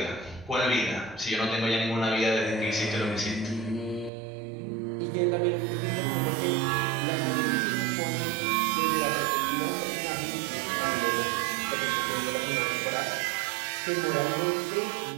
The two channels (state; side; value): drops out; left; at 4.1 s